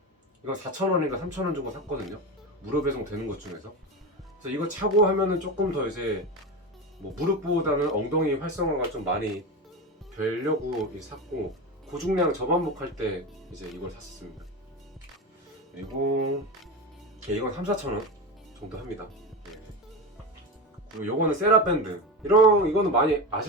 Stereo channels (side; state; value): both; normal; correlation 0.21